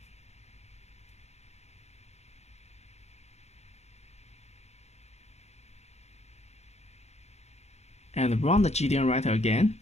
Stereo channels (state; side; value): late; right; 0.31 ms